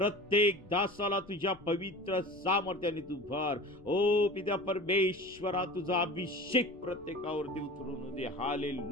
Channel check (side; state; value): left; noise; rumble, 24 dB below the sound